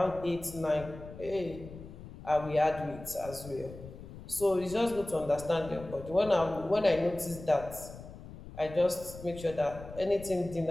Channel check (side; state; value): left; noise; rumble, 14 dB below the sound